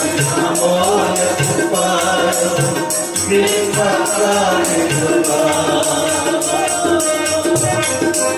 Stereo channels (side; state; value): both; identical; correlation 1.00